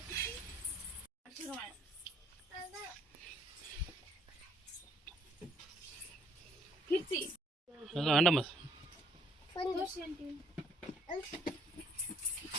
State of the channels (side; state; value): both; normal; correlation 0.64